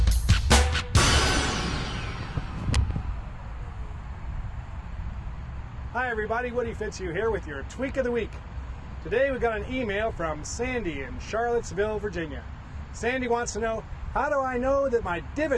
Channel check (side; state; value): both; identical; correlation 1.00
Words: Hi everybody, Woody Fitzhugh here with your Tweak of the Week. Today we got an email from Sandy in Charlottesville, Virginia. Sandy wants to know, how do I know that my